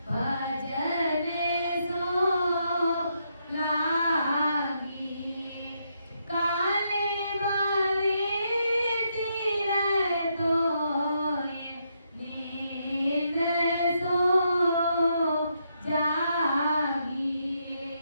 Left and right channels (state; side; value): inverted; both; correlation -0.78